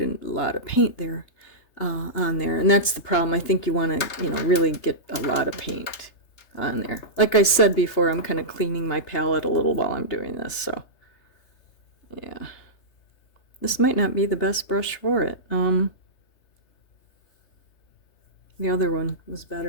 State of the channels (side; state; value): right; late; 3.3 ms